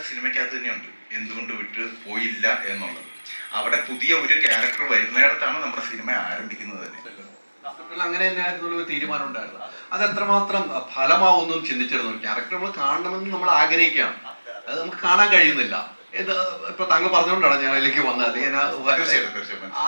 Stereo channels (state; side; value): inverted; both; correlation -1.00